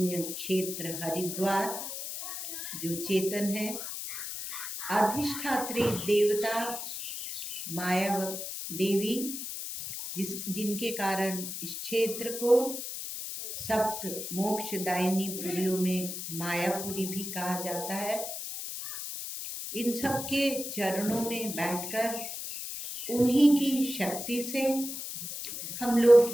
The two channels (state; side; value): noise; left; hiss, 6 dB below the sound